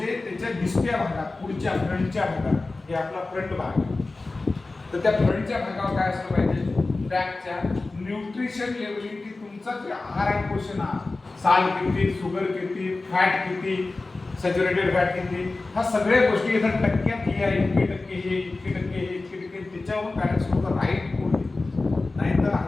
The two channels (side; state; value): right; quieter; 3.4 dB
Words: त्याच्या दिसत्या भागात, पुढच्या फ्रंटच्या भागात, हे आपला फ्रंट भाग, तर त्या फ्रंटच्या भागावर काय असलं पाहिजे, पॅकच्या न्यूट्रिशन लेवलिंग की तुमचा जे आहार आहे क्वेश्चन आहे, साल किती, शुगर किती, फॅट किती, सॅच्युरेटेड फॅट किती, ह्या सगळ्या गोष्टी इथं टक्क्यात लिहा, इतके टक्के हे, इतके टक्के हे, इतके टक्के, त्याच्यावर पॅरेंट्स लोक राईट फूड, नाहीतर